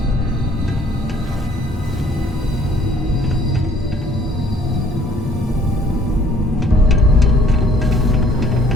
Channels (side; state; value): both; normal; correlation 0.59